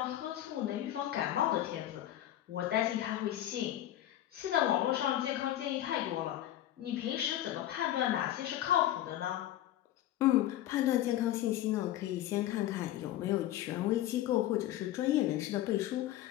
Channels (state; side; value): quieter; right; 13.3 dB